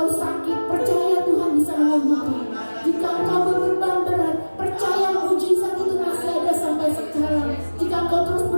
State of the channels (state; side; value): inverted; both; correlation -1.00